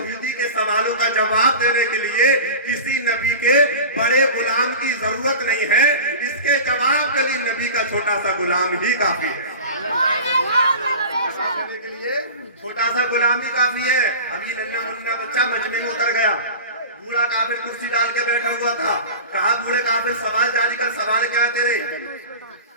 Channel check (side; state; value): both; inverted; correlation -0.34